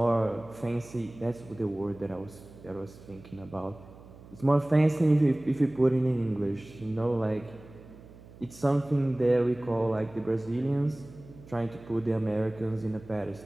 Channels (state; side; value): noise; right; hum, 20 dB below the sound